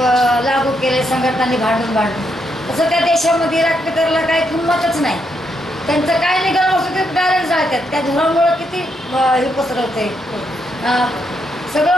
लागू केलं संघटनांनी भांडून. तसं त्या देशामध्ये राष्ट्रकरला काही किंमतच नाही. त्यांचं काय निघालं असतं ते डायरेक्ट जाळतात. त्या धुरामुळं किती हे पसरवते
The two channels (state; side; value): normal; both; correlation 0.78